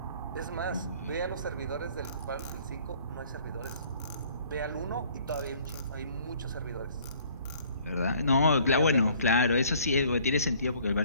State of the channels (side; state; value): both; inverted; correlation -0.57